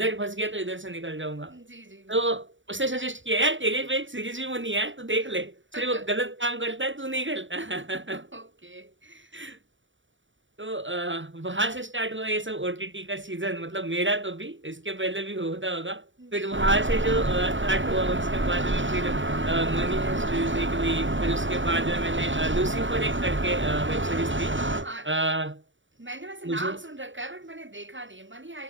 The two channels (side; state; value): left; late; 0.55 ms